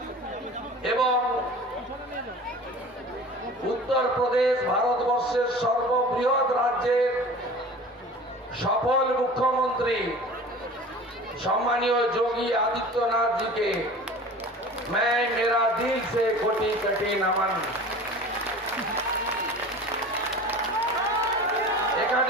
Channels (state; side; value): normal; both; correlation 0.39